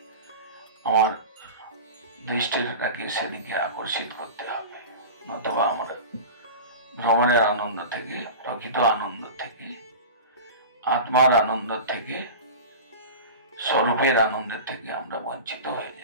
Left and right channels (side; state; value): both; inverted; correlation -0.31